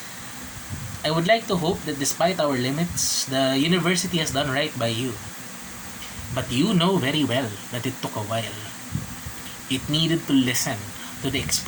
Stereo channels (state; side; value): identical; both; correlation 1.00